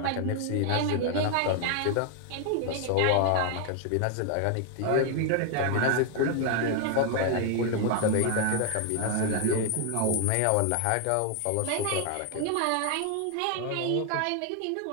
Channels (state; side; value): different; both; correlation 0.00